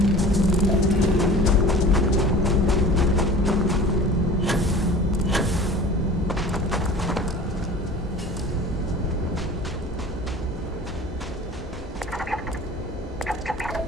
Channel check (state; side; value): normal; both; correlation 0.41